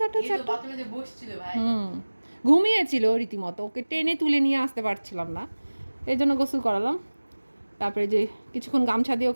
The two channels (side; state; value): both; inverted; correlation -1.00